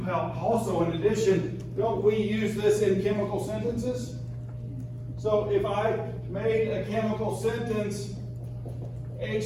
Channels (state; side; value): identical; both; correlation 1.00